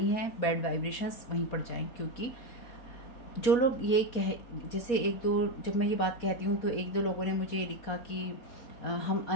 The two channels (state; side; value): late; right; 4.2 ms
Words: हैं बैड वाइब्रेशंस वहीं पर जाएं। क्योंकि जो लोग ये जैसे एक दो, जब मैं ये बात कहती हूँ तो एक दो लोगों ने मुझे लिखा कि हम